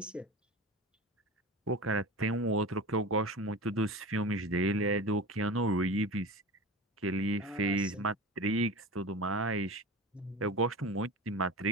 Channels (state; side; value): normal; both; correlation 0.31